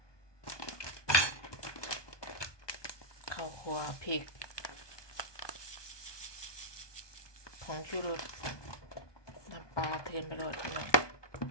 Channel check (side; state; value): right; late; 1.2 ms